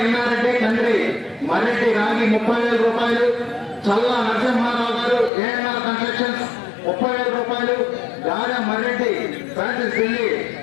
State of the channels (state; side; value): drops out; right; at 5.3 s